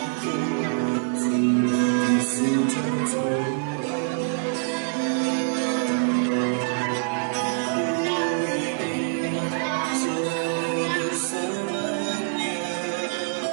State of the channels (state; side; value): silent; left; digital silence